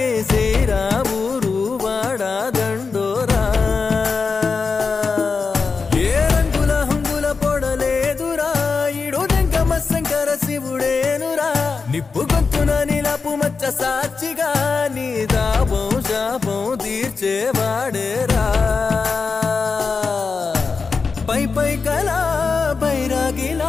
శ్రీరామురు వాడా దండోరా ఏ రంగుల హంగుల పొడలేదురా ఇడు దెంగమ శంకర శివుడేనురా నిప్పు గొంతున నిలపు మచ్చ సాక్షిగా నీ దాపం శాపం తీర్చేవాడేరా పై పై కలా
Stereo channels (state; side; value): quieter; right; 4.8 dB